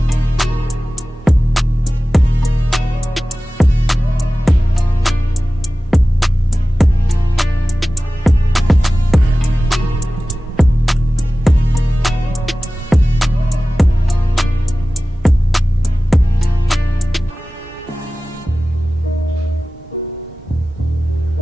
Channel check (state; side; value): normal; both; correlation 0.96